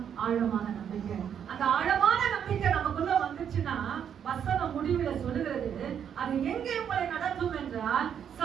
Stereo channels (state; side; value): quieter; left; 8.4 dB